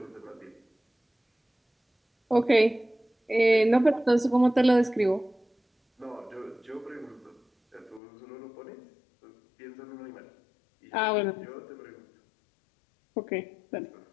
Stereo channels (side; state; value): right; drops out; at 8.0 s